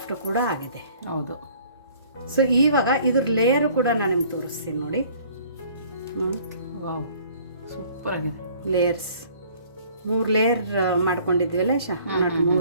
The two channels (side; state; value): both; inverted; correlation -0.55